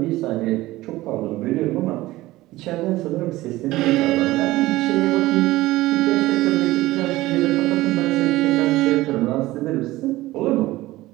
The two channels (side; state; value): left; quieter; 17.7 dB